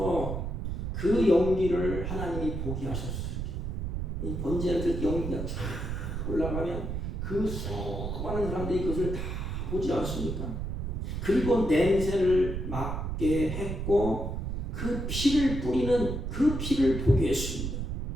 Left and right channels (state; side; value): noise; right; rumble, 3 dB below the sound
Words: 그 연기를 하나님이 보게 하셨어요. 이 번제를 드릴 때 연기가 쫙 올라가면 그 수많은 사람들이 그것을 다 보지 않습니까? 그리고 냄새를 맡게 했고 그 피를 뿌리는 그 피를 보게 했습니다.